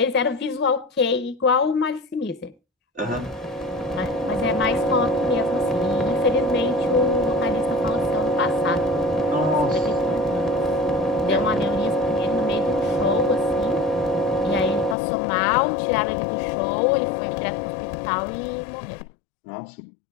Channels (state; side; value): drops out; right; at 15.0 s